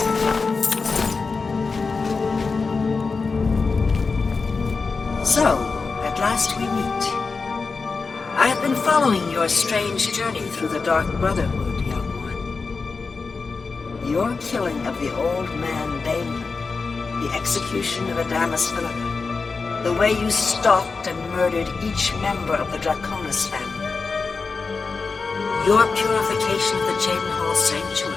So, at last we meet. I have been following your strange journey through the Dark Brotherhood, young one. Your killing of the old man Balin, the execution of Adamus Philippa, the way you stalked and murdered each member of the Draconis family. Your purification of the Jadenhall Sanctuary.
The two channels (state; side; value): quieter; right; 4.5 dB